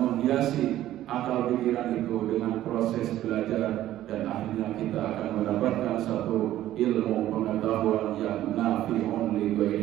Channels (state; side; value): quieter; left; 13.5 dB